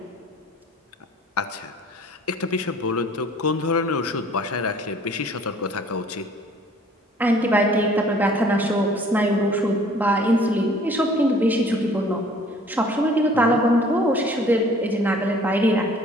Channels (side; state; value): both; normal; correlation 0.53